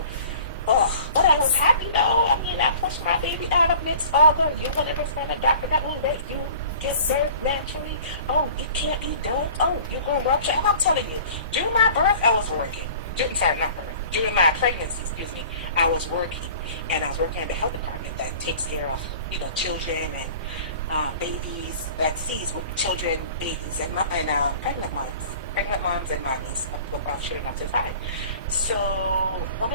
Oh, but I was happy though. I mean, I pushed my baby out amidst all the, you want to find a doctor that will let you get birth naturally. Oh, it can't be done. Oh, you're going to rupture. And I'm telling you, during my birth, I was working. During my pregnancy, I was working. And I was working at the health department that takes care of, you know, children and babies, that sees with children, babies, and pregnant moms and mommies of children up to 5. So one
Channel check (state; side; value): inverted; both; correlation -0.45